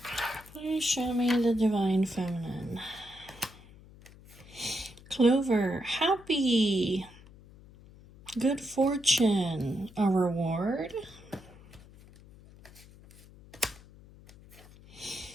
Please show me the Divine Feminine. Clover, happy, good fortune, a reward.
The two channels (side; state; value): left; noise; hum, 22 dB below the sound